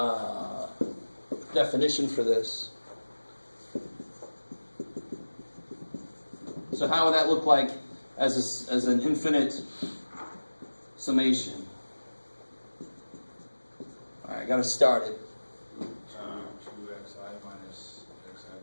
definition for this. So how would that look like as an infinite summation? All right, I got to start it. 2xi minus xi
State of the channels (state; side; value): inverted; both; correlation -1.00